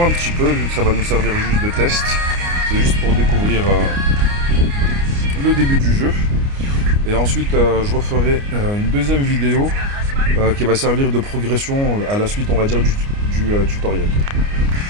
un petit peu vu que ça va nous servir juste de test. C'est juste pour découvrir le début du jeu. Et ensuite je referai une deuxième vidéo qui va servir de progression à la suite on va dire du tutoriel.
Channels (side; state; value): left; late; 29 ms